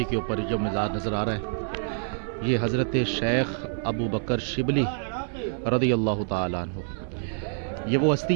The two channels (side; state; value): left; silent; 58 dB below the other